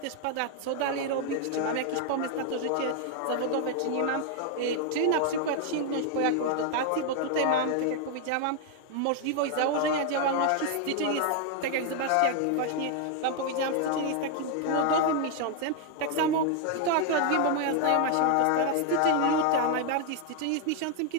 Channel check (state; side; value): different; both; correlation 0.00